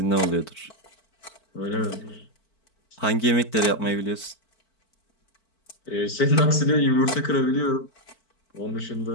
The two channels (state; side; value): late; right; 4.5 ms